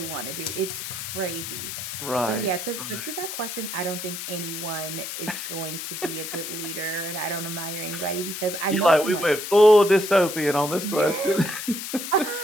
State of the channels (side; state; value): left; noise; hiss, 6 dB below the sound